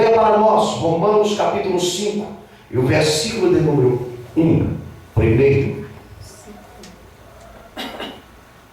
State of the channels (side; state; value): both; identical; correlation 1.00